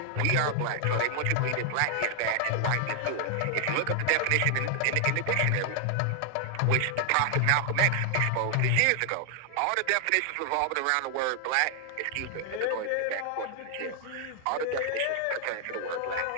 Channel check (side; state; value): both; different; correlation 0.00